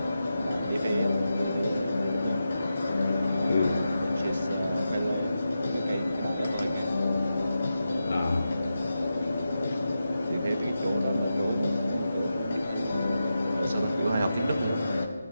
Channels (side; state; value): both; inverted; correlation -0.89